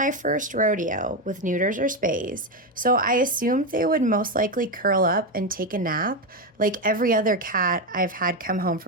first rodeo with neuters or spays, so I assumed they would most likely curl up and take a nap like every other cat I've had come home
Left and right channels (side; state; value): both; normal; correlation 0.10